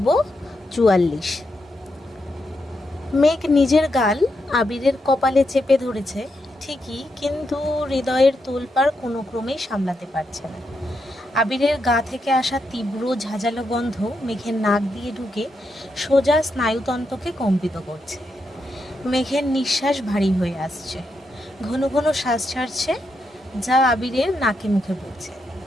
৪৪। মেঘ নিজের গাল আবিরের কপালে চেপে ধরেছে ঠিকই, কিন্তু হৃদয়ের তোলপাড় কোনো ক্রমেই সামলাতে পারছে না। আবিরের গা থেকে আসা তীব্র ঝাঁঝালো গন্ধ মেঘের নাক দিয়ে ঢুকে সোজা স্নায়ুতন্ত্রকে কম্পিত করছে। মেঘের নিঃশ্বাস ভারী হয়ে আসছে, ঘন ঘন শ্বাস ছাড়ছে, যা আবিরের নাকে মুখে পড়ছে।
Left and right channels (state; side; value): normal; both; correlation 0.83